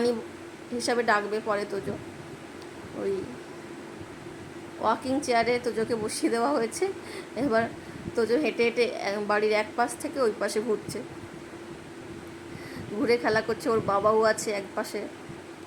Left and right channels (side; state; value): both; identical; correlation 1.00